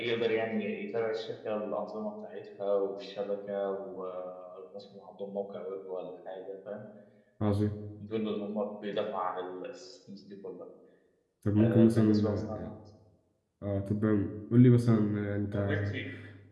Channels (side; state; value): both; identical; correlation 1.00